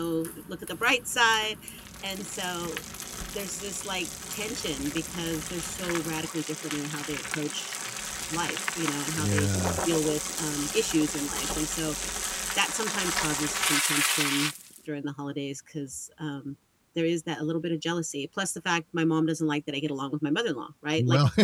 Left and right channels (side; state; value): both; identical; correlation 1.00